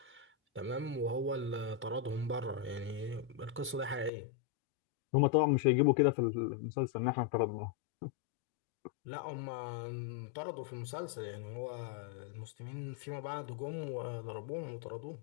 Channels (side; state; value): right; drops out; at 4.1 s